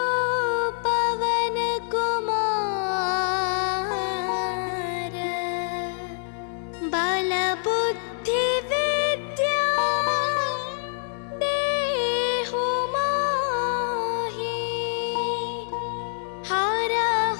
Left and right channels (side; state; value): right; silent; 61 dB below the other